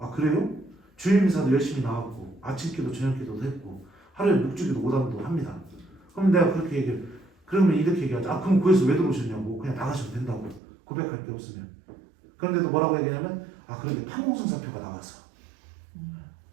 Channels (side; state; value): left; drops out; at 10.6 s